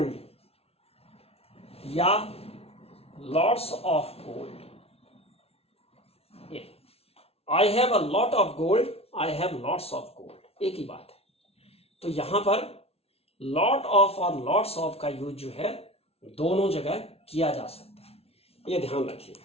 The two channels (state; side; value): late; right; 0.29 ms